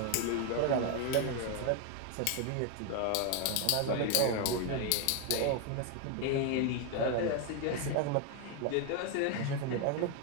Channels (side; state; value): both; different; correlation 0.01